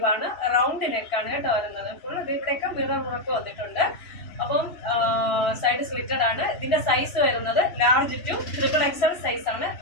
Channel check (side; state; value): right; late; 3.0 ms